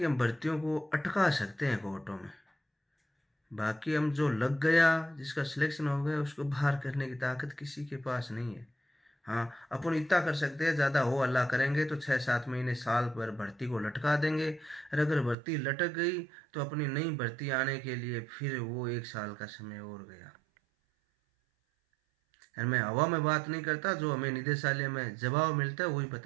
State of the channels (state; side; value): drops out; left; at 15.4 s